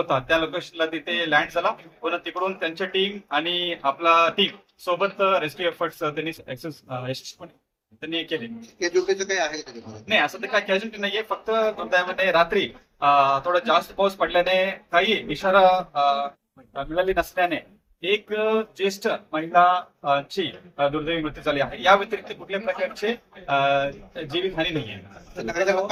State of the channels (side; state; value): both; identical; correlation 1.00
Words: त्या लोकेशनला तिथे लँड झाला. पुन्हा तिकडून त्यांच्या टीम आणि आपला टीम सोबत रेस्क्यू एफर्ट्स त्यांनी यशस्वीपणे त्यांनी केले. काय आहे नाही, असं तर काय कॅज्युअलिटी नाहीये. फक्त दुर्दैवाने रात्री थोडा जास्त पाऊस पडल्याने काही इशारा मिळाली नसल्याने एक ज्येष्ठ महिलाची दुर्दैवी मृत्यू झाली आहे. या व्यतिरिक्त कुठल्या प्रकारचे जीवितहानी नाहीये.